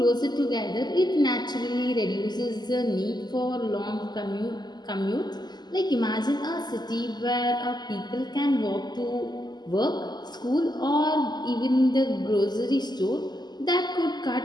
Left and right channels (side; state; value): right; late; 0.21 ms